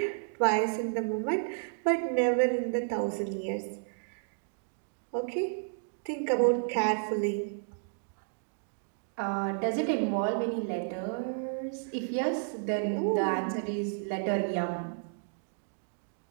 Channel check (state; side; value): silent; left; digital silence